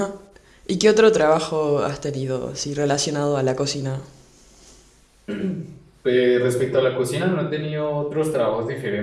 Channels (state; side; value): identical; both; correlation 1.00